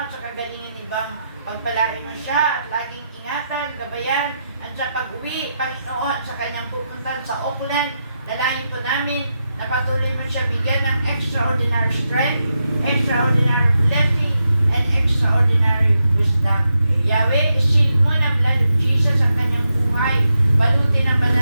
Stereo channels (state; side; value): inverted; both; correlation -0.85